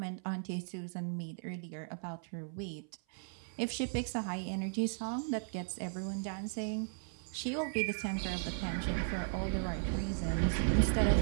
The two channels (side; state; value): left; silent; 53 dB below the other